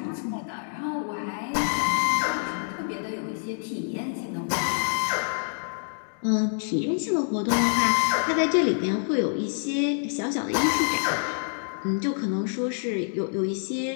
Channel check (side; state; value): right; silent; digital silence